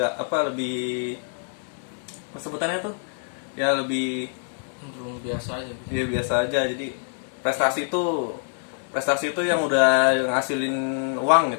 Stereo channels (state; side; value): silent; right; digital silence